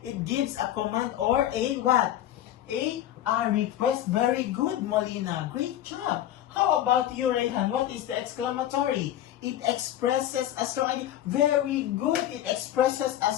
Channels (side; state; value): right; quieter; 12.3 dB